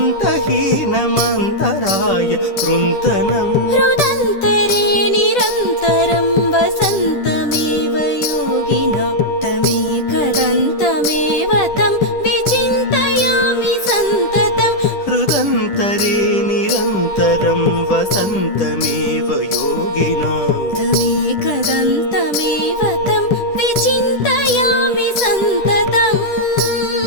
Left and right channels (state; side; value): late; right; 10 ms